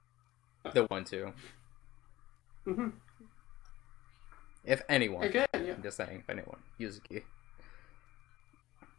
the one to. If anyone. Again, yeah. I'm just saying, if anyone. Yuzuki.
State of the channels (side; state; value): right; quieter; 17.0 dB